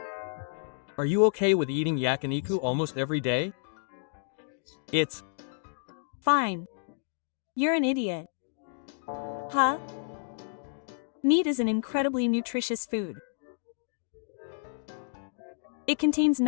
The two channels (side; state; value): right; silent; digital silence